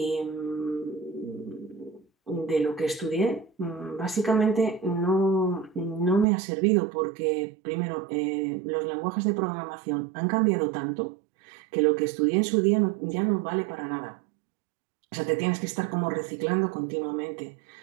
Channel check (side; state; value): left; drops out; at 6.2 s